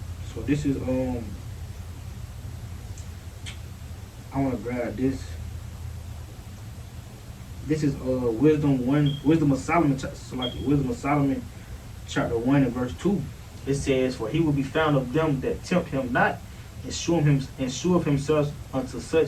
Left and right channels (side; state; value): both; identical; correlation 1.00